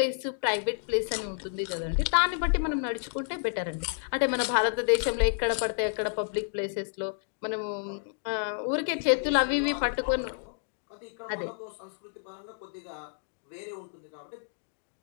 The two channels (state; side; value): silent; right; digital silence